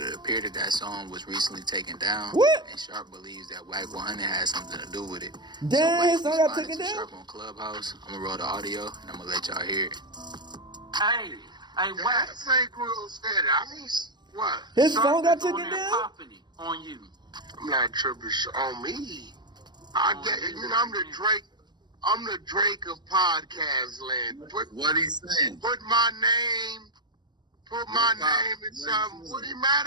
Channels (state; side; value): late; left; 0.21 ms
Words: appeared that that song was recently taken down. What? And Sharp believes that WACK100 has something to do with it. Damn, his so song Wack got taken responded to down? Sharp on Clubhouse. I'm gonna roll the audio, and I'm gonna let y'all hear it. Hey, Wack. That ain't real said. I mean, what? His song got Sharp is on taken there down? popping it on you. I'm not tripping on me. I get it. You know, I'm the Drake. I'm the Drake of podcast land. What he saying? Put my name in something. What he mad